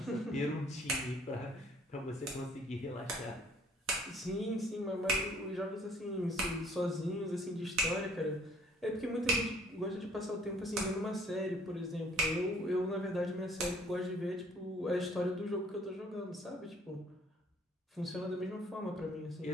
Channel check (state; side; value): normal; both; correlation 0.58